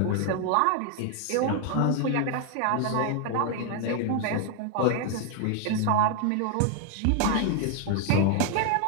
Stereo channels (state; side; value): different; both; correlation 0.01